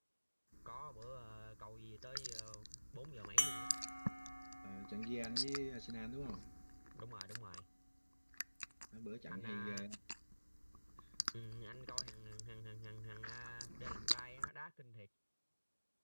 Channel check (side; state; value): both; inverted; correlation -1.00